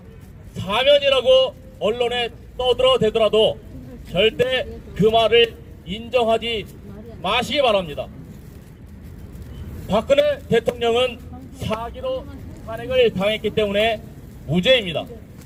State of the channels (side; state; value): both; identical; correlation 1.00